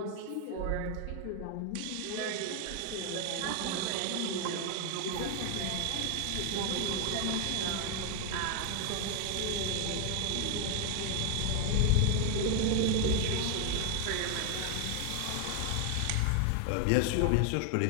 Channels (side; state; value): both; different; correlation 0.00